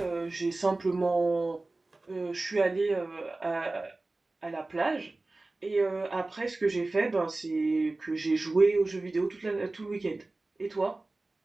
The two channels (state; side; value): quieter; left; 3.1 dB